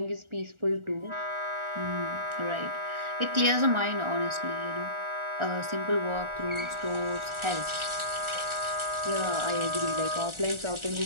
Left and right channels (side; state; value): left; late; 1.4 ms